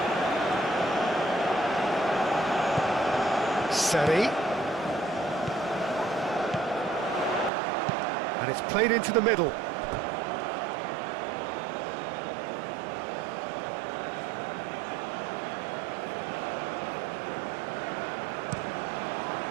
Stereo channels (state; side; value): drops out; left; at 7.5 s